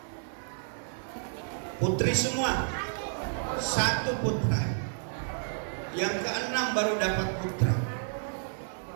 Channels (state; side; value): silent; left; 57 dB below the other